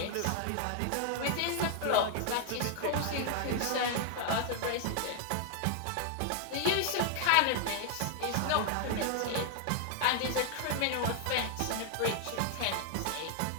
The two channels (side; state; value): both; different; correlation 0.00